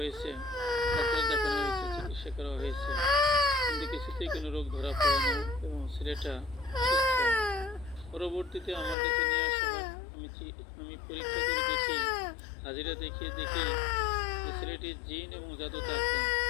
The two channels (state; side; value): drops out; right; at 9.0 s